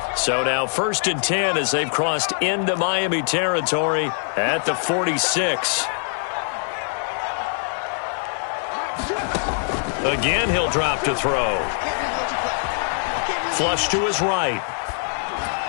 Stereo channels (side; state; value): right; silent; digital silence